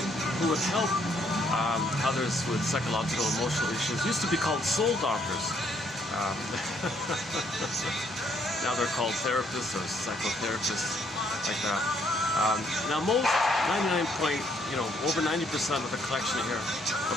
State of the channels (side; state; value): both; normal; correlation 0.69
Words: who would help others with psychological emotional issues used to be called soul doctors. Now they're called therapists or psychotherapists, like that. Now most, over 90% of the collection here